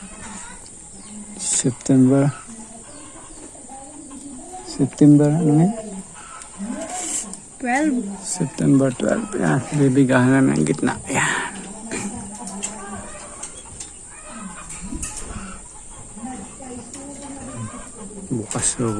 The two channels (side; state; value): both; identical; correlation 1.00